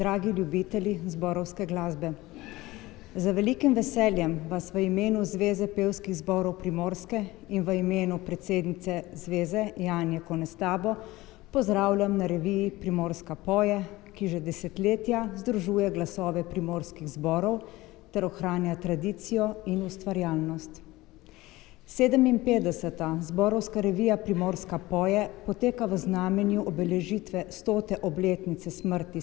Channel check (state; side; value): quieter; right; 19.2 dB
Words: ljubitelji zborovske glasbe. Z velikim veseljem vas v imenu Zveze pevskih zborov Primorske in v imenu predsednice Zveze Janje Konestabo pozdravljam na reviji Primorska poje, ki že desetletja združuje glasove primorskih zborov ter ohranja tradicijo in ustvarjalnost. 57. zborovska revija Primorska poje poteka v znamenju obeležitve 100. obletnice smrti